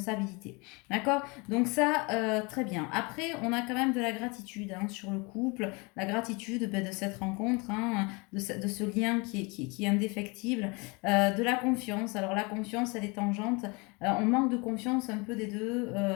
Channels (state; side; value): quieter; right; 28.5 dB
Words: D'accord? Donc ça, très bien. Après, on a quand même de la gratitude hein, sur le couple, la gratitude de cette rencontre, hein, de de ce lien qui est indéfectible, de la confiance. Alors la confiance, elle est tangente. On manque de confiance un peu des deux.